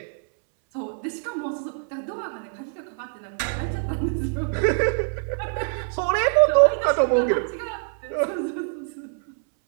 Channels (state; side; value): silent; left; 62 dB below the other